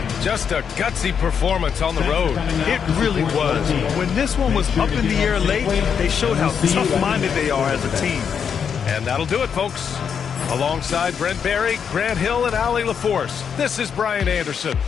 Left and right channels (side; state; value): right; quieter; 7.2 dB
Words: Just a gutsy performance on the road. It really was. When this one was up in the air late, they showed how tough-minded they are as a team. And that'll do it, folks. Alongside Brent Barry, Grant Hill, and Allie LaForce, this is Brian Anderson